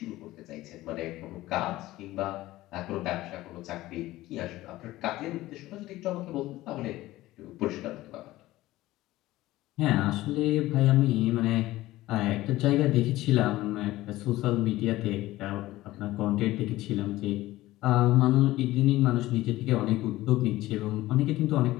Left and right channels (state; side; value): quieter; right; 16.9 dB